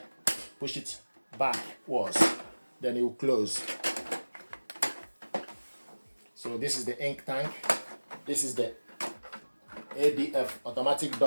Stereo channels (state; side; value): inverted; both; correlation -1.00